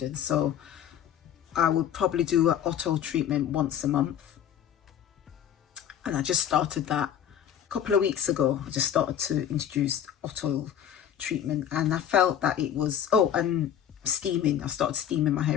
So I would probably do an auto treatment once a month. And I just started that a couple of weeks ago. I just started to introduce auto treatment and I felt that it was, oh, and steaming. I started steaming my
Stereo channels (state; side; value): quieter; right; 9.6 dB